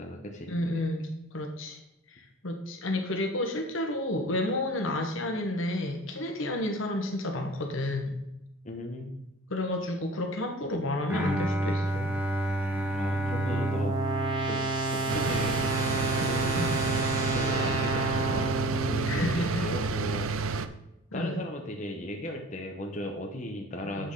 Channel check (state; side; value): normal; both; correlation 0.44